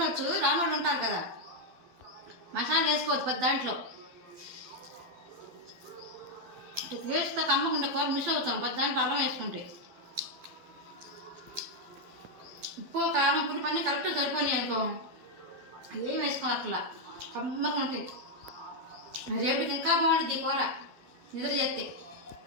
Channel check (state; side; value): late; left; 12 ms